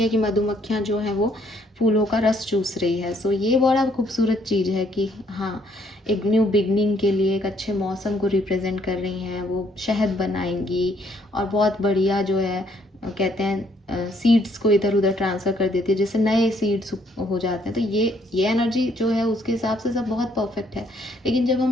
कि मधुमक्खियाँ जो हैं वो फूलों का रस चूस रही है। सो ये बड़ा खूबसूरत चीज़ है कि हाँ, एक न्यू बिगनिंग के लिए एक अच्छे मौसम को रिप्रेजेंट कर रही हैं। वो शहद बनाएंगी और बहुत बढ़िया जो है, कहते हैं सीड्स को इधर उधर ट्रांसफ़र कर देती है, जैसे नए सीड्स हो जाते हैं। तो ये एनर्जी जो है उसके हिसाब से सब बहुत परफेक्ट है। लेकिन जब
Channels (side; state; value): both; normal; correlation 0.68